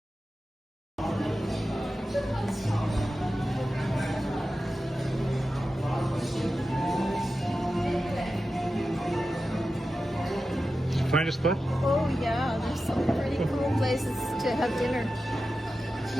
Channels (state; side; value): normal; both; correlation 0.92